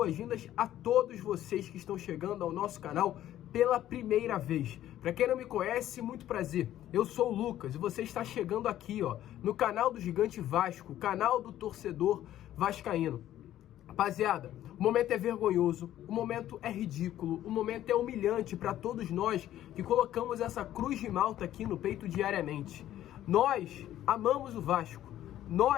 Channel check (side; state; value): right; quieter; 12.7 dB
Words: a todos vocês que estão chegando ao nosso canal pela primeira vez. Para quem não me conhece, muito prazer. Eu sou o Lucas e você está chegando aqui, no canal do Gigante Vasco, canal do torcedor vascaíno. Rapaziada, o momento é vergonhoso, o momento é ridículo, o momento é humilhante para todos nós que colocamos essa cruz de malta aqui no peito diariamente. Nós amamos o Vasco,